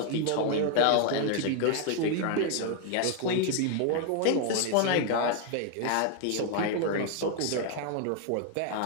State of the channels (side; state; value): both; different; correlation 0.00